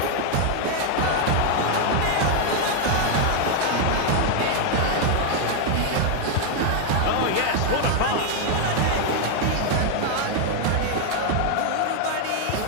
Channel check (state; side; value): different; both; correlation 0.00